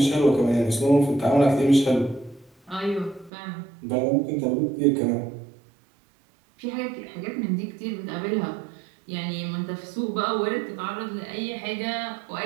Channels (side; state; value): left; drops out; at 3.3 s